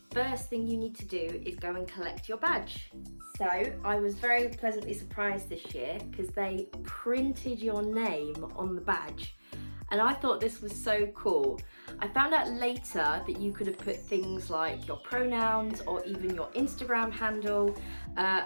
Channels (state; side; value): inverted; both; correlation -1.00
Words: first thing you need to do is go and collect your badge. So I was very pleasantly surprised this year because they printed your name on the badge. And I thought this was so cool. I found out later that you could have put things like your pronouns or even your Instagram handle